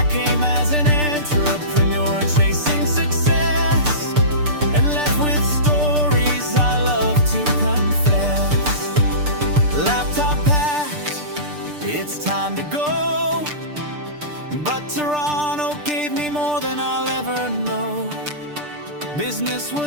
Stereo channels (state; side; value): late; left; 6.7 ms